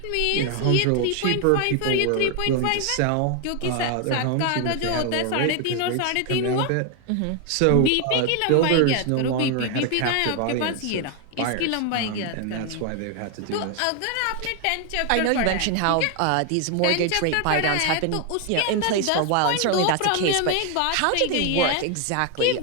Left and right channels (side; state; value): both; different; correlation 0.01